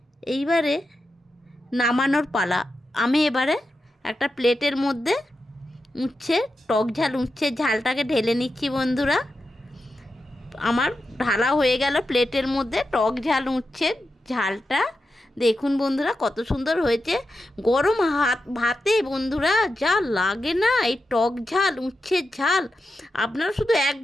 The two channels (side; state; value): both; normal; correlation 0.89